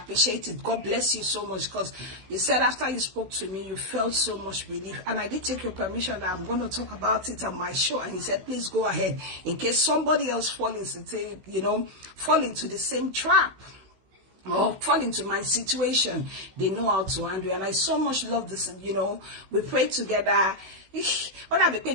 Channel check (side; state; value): left; late; 16 ms